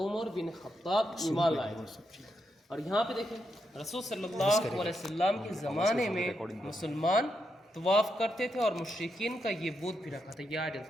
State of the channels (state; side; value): normal; both; correlation 0.83